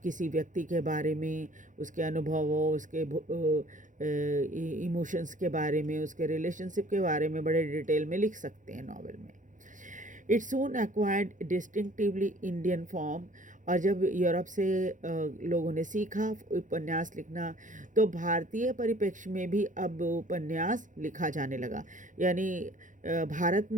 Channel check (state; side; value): late; left; 0.37 ms